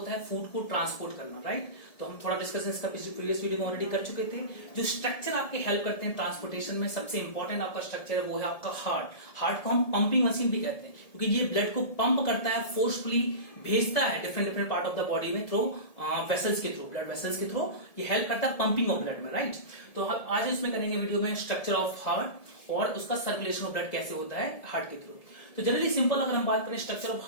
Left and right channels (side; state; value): right; late; 1.7 ms